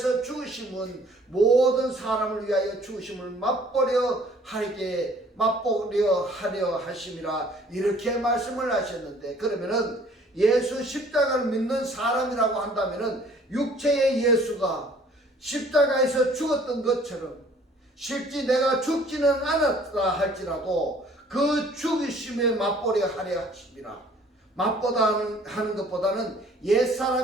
죽으심은 모든 사람을 위하여 죽으심을 맛보려 하려 하심이라 이렇게 말씀을 하셨는데 그러면은 예수 십자가를 믿는 사람이라고 한다면은 육체의 예수가 십자가에서 죽었던 것처럼 실제 내가 죽지는 않았다 할지라도 그 죽으심에 맛보려 하려 하심이라. 맛보다 하는 것보다는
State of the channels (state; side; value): normal; both; correlation 0.56